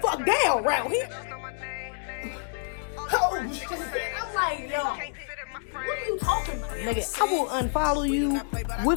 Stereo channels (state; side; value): silent; right; digital silence